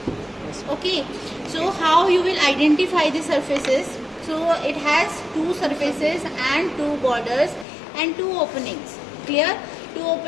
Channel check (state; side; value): drops out; right; at 7.7 s